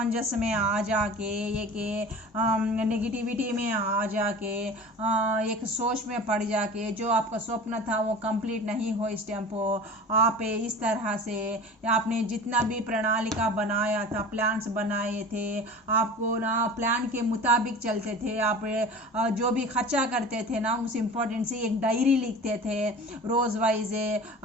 में आ जाके, एक नेगेटिविटी में आ जाके, एक सोच में पड़ जाके, जो आपका स्वप्न था वो कंप्लीट नहीं हो इस टाइम पर, आप इस तरह से आपने जितना भी प्रणालिका बनाया था, प्लान्स बनाए थे, आपको ना प्लान के मुताबिक चलते थे। आप जो भी खर्चा करते थे ना, उस इम्पोर्टेंट से एक डायरी लिखते थे रोज़ वाइज,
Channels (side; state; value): both; normal; correlation 0.37